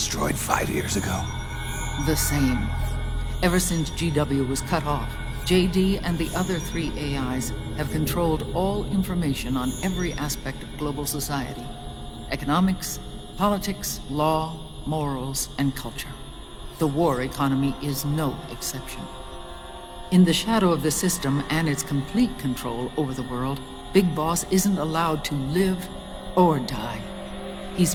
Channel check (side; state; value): both; identical; correlation 1.00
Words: 5 years ago? The same. Ever since GW was cut off, JD and the other 3 AIs have controlled all information on every aspect of global society. Economics, politics, law, morals, and culture. The war economy is no exception. In the shadow of the system and its complete control over the world, Big Boss isn't allowed to live or die. He's